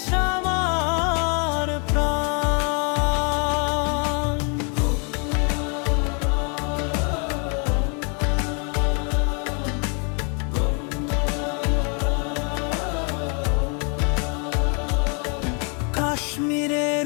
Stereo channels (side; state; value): right; quieter; 36.6 dB